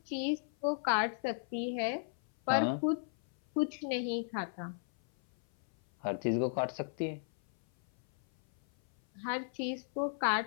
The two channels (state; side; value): silent; right; 54 dB below the other